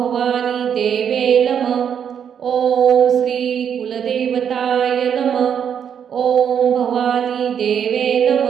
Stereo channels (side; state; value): left; quieter; 8.2 dB